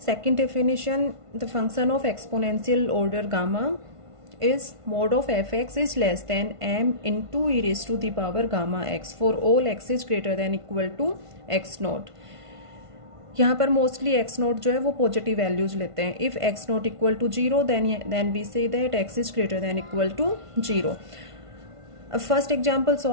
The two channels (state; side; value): late; left; 1.5 ms